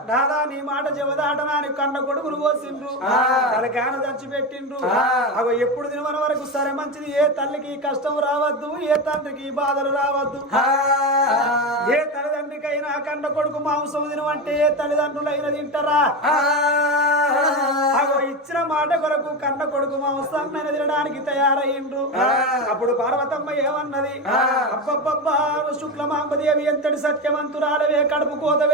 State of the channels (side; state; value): both; normal; correlation 0.19